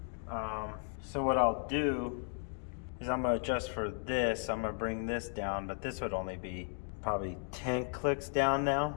So what I'll do is I'm gonna adjust for this. I'm gonna bring this down, but this would only be probably 10 clicks down now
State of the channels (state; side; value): silent; right; 54 dB below the other